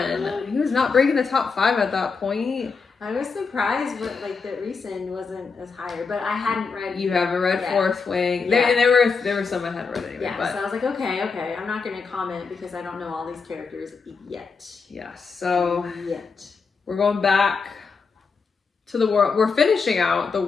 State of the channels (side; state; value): right; quieter; 5.0 dB